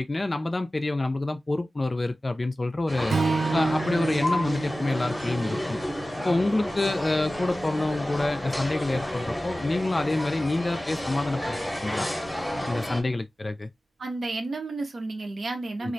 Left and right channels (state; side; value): normal; both; correlation 0.96